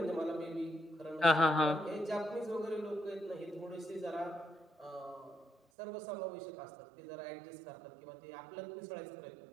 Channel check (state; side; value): drops out; left; at 5.6 s